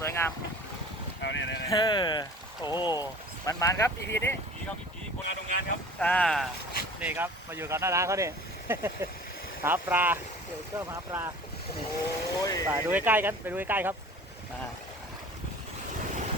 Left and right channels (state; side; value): normal; both; correlation 0.43